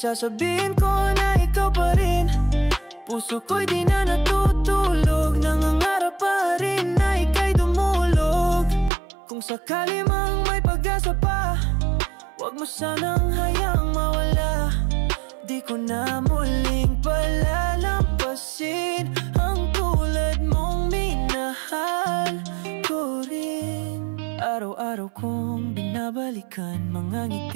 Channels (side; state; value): left; drops out; at 8.9 s